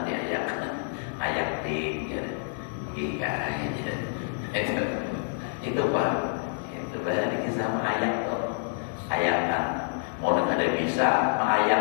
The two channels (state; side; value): silent; right; digital silence